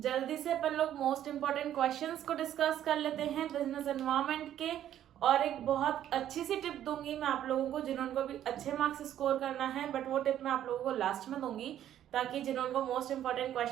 से अपन लोग मोस्ट इंपॉर्टेंट क्वेश्चंस को डिस्कस कर लेते हैं बिजनेस एनवायरनमेंट के। और एक बहुत अच्छी सी टिप दूंगी मैं आप लोगों को जिन्होंने भी अच्छे मार्क्स स्कोर करना है, बट वो टिप मैं आप लोगों को लास्ट में दूंगी ताकि जिन्होंने मोस्ट इंपॉर्टेंट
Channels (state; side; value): quieter; left; 11.2 dB